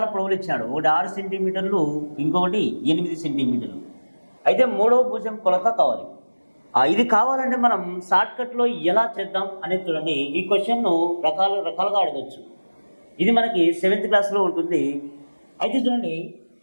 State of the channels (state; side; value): inverted; both; correlation -1.00